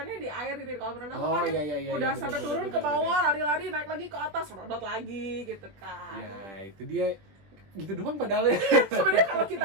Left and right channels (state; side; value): late; left; 20 ms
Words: di air gitu di kolam renang Oh, kan iya, udah bener, sampai bener, turun bener, ke bawah lari-lari naik lagi ke atas serodot lagi gitu kan. Ya, itu dia gitu doang padahal ya. Sebenarnya kalau